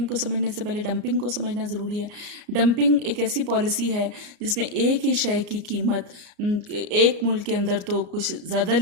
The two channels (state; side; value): late; left; 34 ms